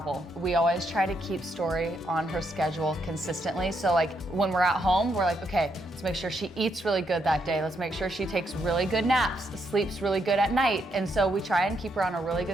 we always try to keep Story on her schedule consistently. So like when we're at home, we're like, okay, let's make sure she eats really good that day. Let's make sure she takes really good naps, sleeps really good at night. And so we try and keep her on a really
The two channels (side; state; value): both; normal; correlation 0.78